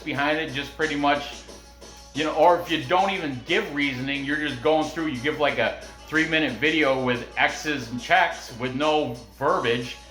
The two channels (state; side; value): identical; both; correlation 1.00